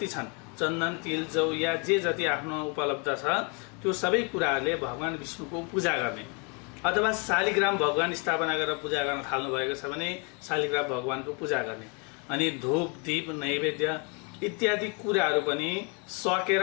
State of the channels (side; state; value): right; quieter; 33.8 dB